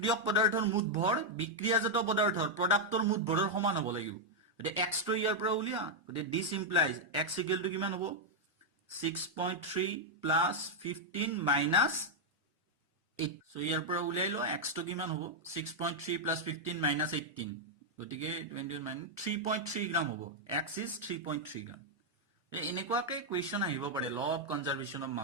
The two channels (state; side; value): normal; both; correlation -0.02